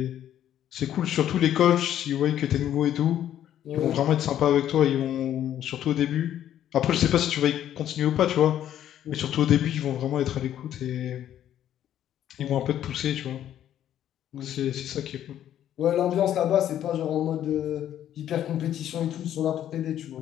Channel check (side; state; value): right; quieter; 11.1 dB